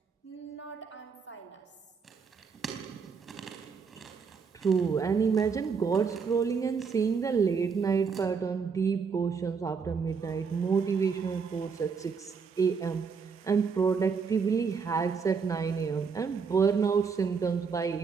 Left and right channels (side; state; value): left; quieter; 5.7 dB